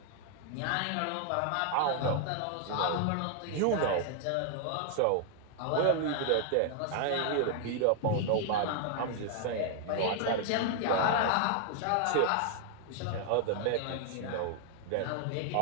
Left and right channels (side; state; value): both; different; correlation 0.00